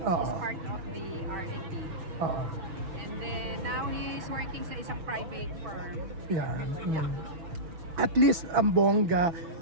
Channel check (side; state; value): left; late; 6.2 ms